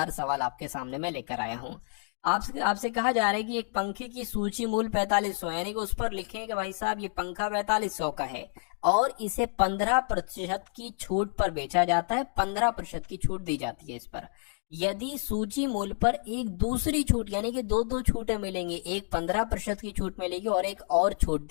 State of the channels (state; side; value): silent; right; 58 dB below the other